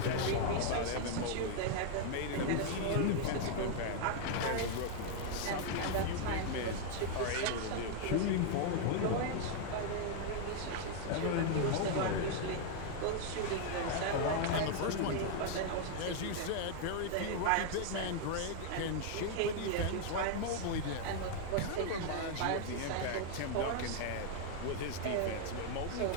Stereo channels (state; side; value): different; both; correlation 0.00